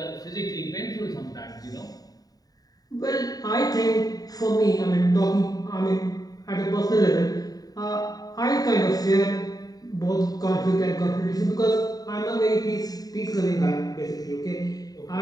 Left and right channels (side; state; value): right; late; 0.18 ms